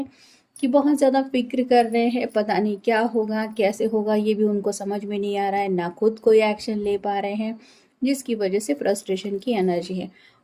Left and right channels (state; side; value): identical; both; correlation 1.00